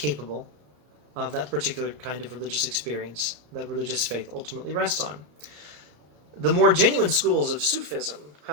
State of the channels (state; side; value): late; left; 34 ms